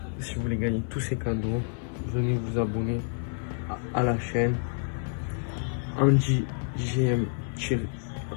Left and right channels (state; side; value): silent; right; 59 dB below the other